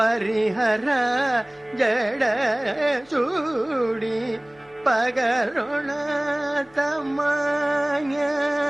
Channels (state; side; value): noise; left; hum, 30 dB below the sound